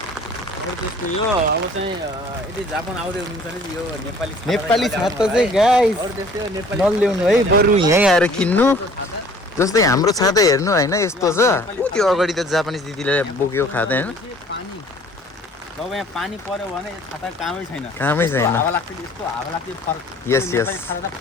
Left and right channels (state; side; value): normal; both; correlation 0.52